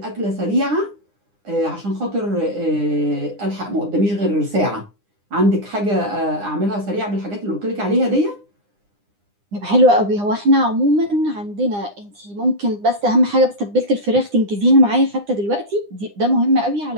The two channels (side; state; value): left; late; 9.8 ms